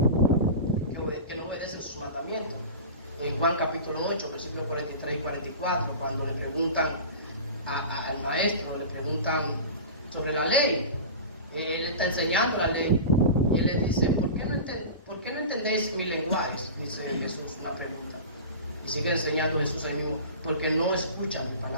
no obedecen sus mandamientos. En Juan capítulo 8, versículos 43 y 44, cuando le preguntan al maestro, le preguntan sobre la ley. Él está enseñando la ley. Y él le dice: ¿por qué no entendéis mi lenguaje? Dice Jesús, una pregunta. Y sigue enseñando Jesús ahí mismo: porque no escuchan mi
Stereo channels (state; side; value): inverted; both; correlation -0.32